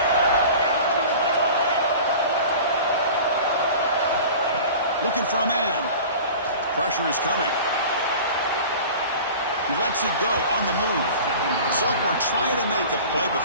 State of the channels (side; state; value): both; inverted; correlation -0.39